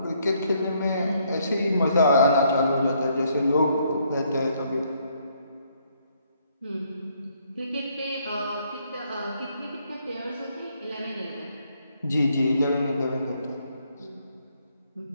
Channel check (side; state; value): both; inverted; correlation -0.70